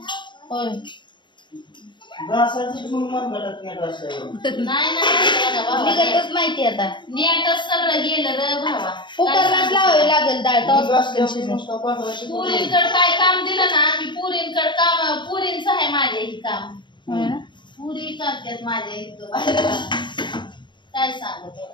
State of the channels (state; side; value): late; right; 0.23 ms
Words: होय निघतच माहिती आता नेटच सगळं गेलं रे भावा कुकरलाच लावावे लागेल डाळ पुरींकड काय काम दिलं ना की पुरींकड काम पुरींच आहे माझ्या ही काम पुरी करतात माझ्या इथं काय सांगू